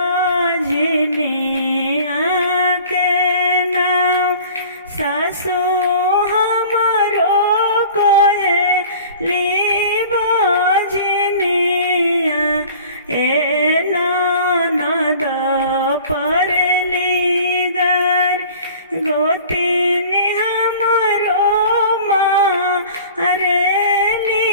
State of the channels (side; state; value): both; inverted; correlation -0.45